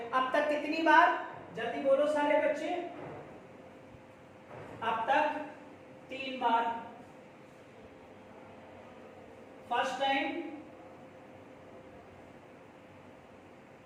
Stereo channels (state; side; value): identical; both; correlation 1.00